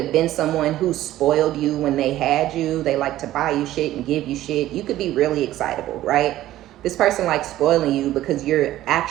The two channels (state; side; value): quieter; left; 14.3 dB